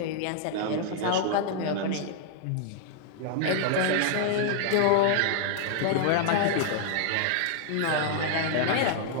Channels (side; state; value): both; different; correlation -0.01